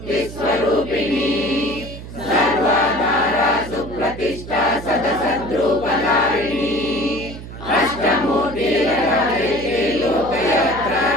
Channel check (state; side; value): noise; right; hum, 12 dB below the sound